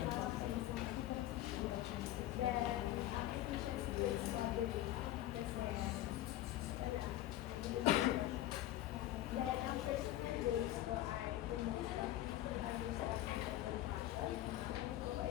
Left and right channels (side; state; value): right; quieter; 14.2 dB